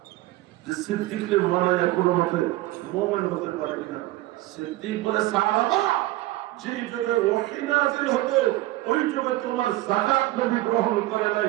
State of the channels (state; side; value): quieter; left; 17.4 dB